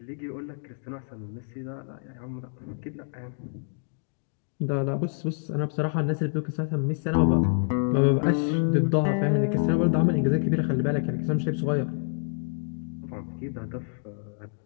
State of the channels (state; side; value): silent; right; digital silence